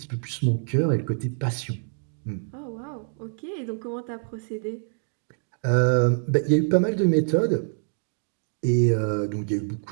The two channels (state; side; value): silent; left; 61 dB below the other